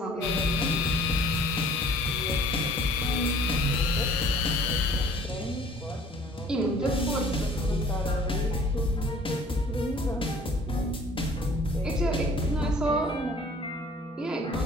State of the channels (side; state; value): both; normal; correlation 0.52